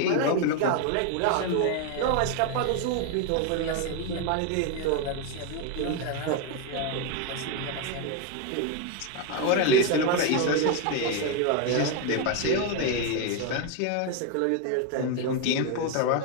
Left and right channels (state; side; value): different; both; correlation 0.02